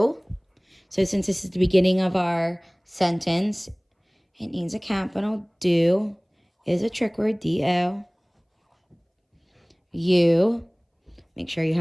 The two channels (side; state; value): both; identical; correlation 1.00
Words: So since this is the beginning of our sentence, it needs a capital. Do is a trick word, D-O. You. Make sure you